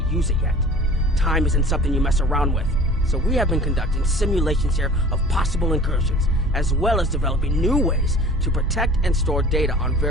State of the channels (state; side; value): normal; both; correlation 0.44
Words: use it yet. Time isn't something you mess around with, so we have been conducting simulations here of possible incursions, as well as developing new ways to protect and store data on